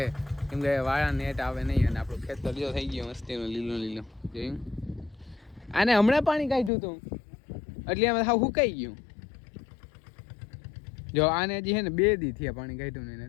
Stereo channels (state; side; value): drops out; right; at 6.7 s